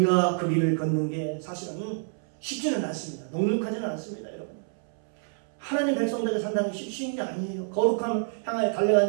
그 길을 걷는 게 사실은 쉽지는 않습니다. 넉넉하지는 않습니다. 여러분. 하나님 백성들이 산다는 게 쉬운 게 아니에요. 거룩함 향하여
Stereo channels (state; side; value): silent; left; 60 dB below the other